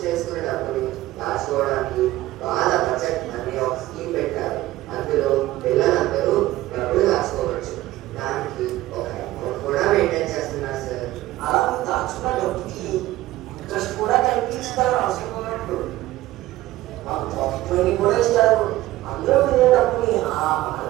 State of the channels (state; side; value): quieter; left; 16.3 dB